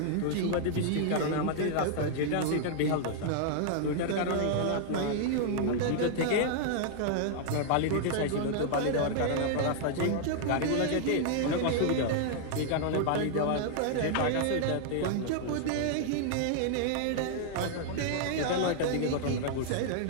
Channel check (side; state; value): both; different; correlation -0.01